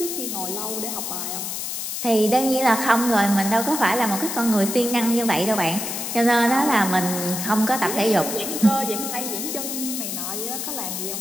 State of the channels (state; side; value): noise; left; hiss, 4 dB below the sound